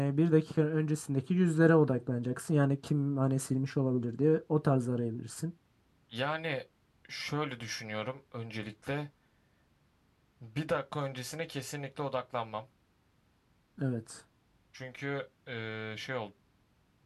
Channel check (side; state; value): both; identical; correlation 1.00